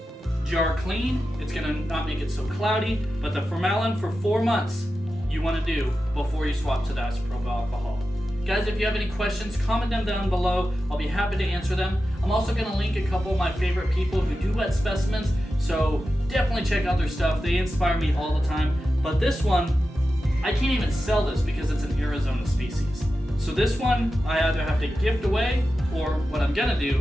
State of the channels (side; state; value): both; normal; correlation 0.92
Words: jar clean. It's going to not make it so cloudy, but the formalin for 4 months you want to do before you swap to the isopropyl alcohol. Guys, if you have any questions, comment them down below. I'll be happy to answer them. I'm also going to link a couple of my favorite people who do wet specimens, so definitely check out their stuff. They inspire me all the time. But this one, I can't even sell this because it's an Arizona species. So this one, I either have to gift away, or what I'm gonna